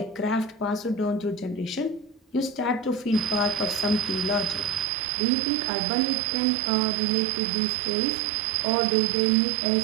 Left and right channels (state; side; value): drops out; left; at 4.9 s